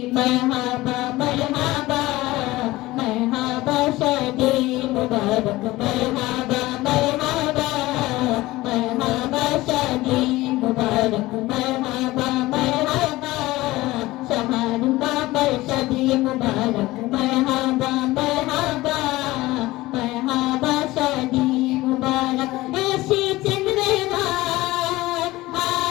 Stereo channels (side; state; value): right; quieter; 18.6 dB